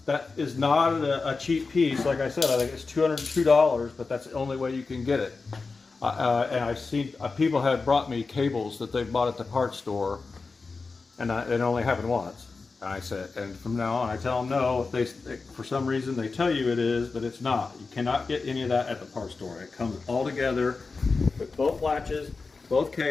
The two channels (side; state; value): right; quieter; 4.2 dB